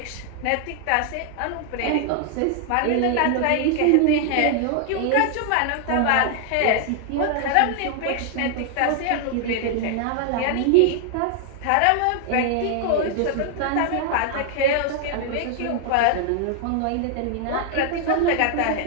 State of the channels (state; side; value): different; both; correlation 0.00